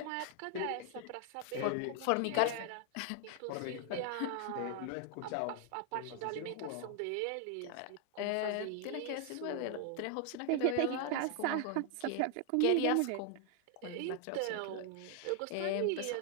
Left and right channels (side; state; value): both; different; correlation 0.00